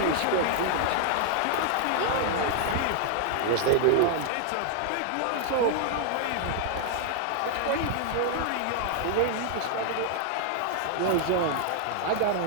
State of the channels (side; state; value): both; different; correlation 0.00